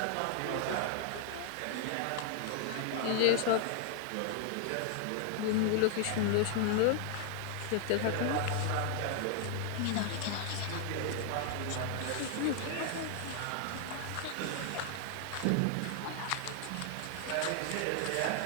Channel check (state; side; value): different; both; correlation 0.00